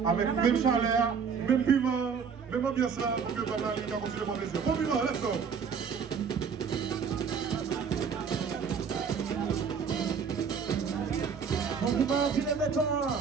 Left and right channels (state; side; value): quieter; left; 6.3 dB